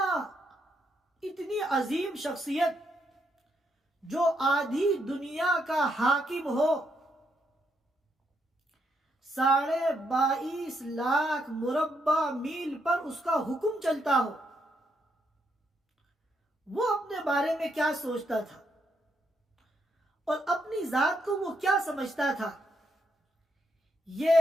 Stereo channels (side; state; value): both; normal; correlation 0.77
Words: اتنی عظیم شخصیت جو آدھی دنیا کا حاکم ہو، 22.5 لاکھ مربع میل پر اس کا حکم چلتا ہو، وہ اپنے بارے میں کیا سوچتا تھا اور اپنی ذات کو وہ کیا سمجھتا تھا،